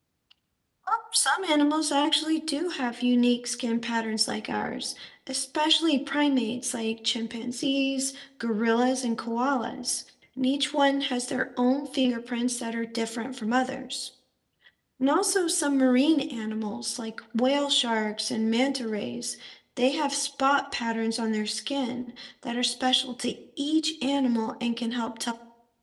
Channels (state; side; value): identical; both; correlation 1.00